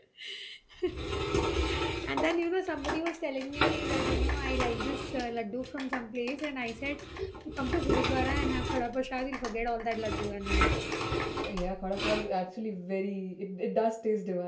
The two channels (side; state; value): both; identical; correlation 1.00